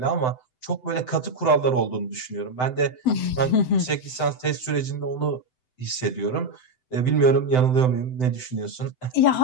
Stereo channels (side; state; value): right; late; 7.9 ms